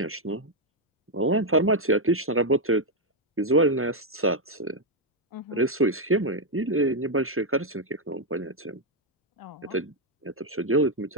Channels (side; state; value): both; normal; correlation 0.01